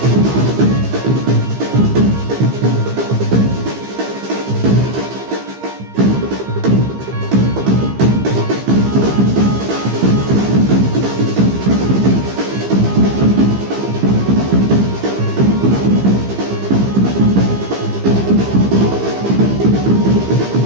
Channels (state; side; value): late; left; 15 ms